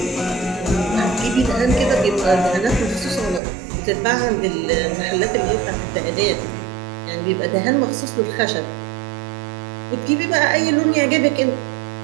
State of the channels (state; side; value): drops out; left; at 3.4 s